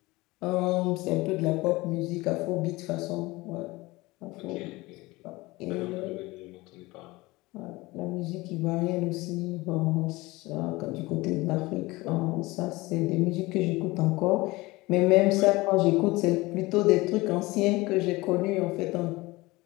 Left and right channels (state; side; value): quieter; right; 21.3 dB